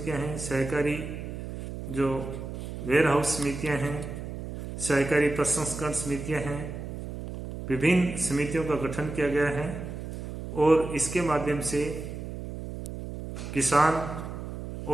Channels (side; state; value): right; noise; hum, 8 dB below the sound